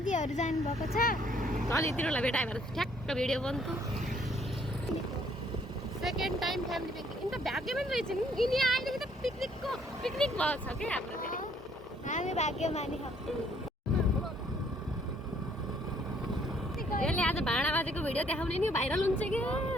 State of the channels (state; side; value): normal; both; correlation 0.64